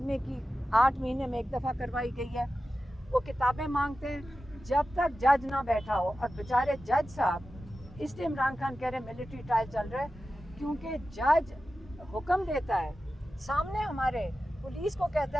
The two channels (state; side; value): normal; both; correlation 0.93